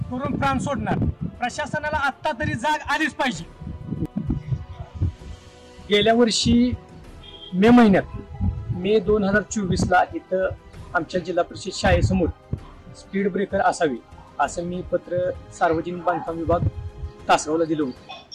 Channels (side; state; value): both; identical; correlation 1.00